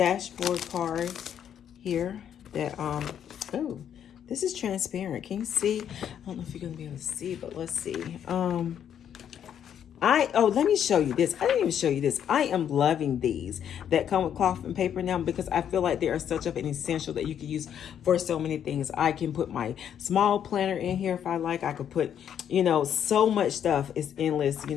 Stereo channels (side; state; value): right; quieter; 9.2 dB